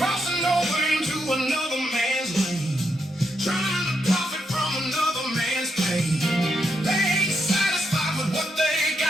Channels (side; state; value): both; normal; correlation 0.81